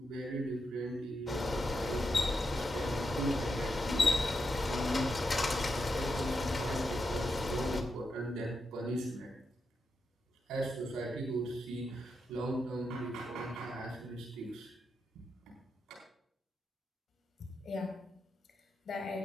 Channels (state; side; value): normal; both; correlation 0.85